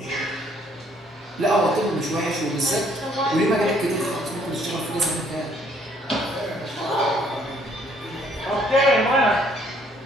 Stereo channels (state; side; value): normal; both; correlation 0.64